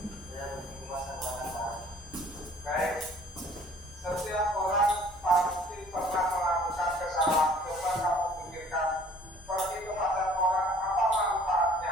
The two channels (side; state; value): both; normal; correlation 0.53